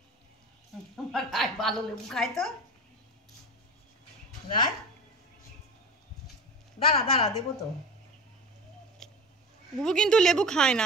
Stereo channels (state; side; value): normal; both; correlation 0.32